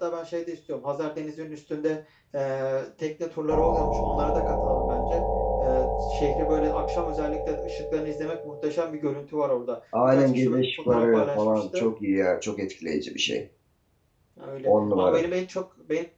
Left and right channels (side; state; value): both; identical; correlation 1.00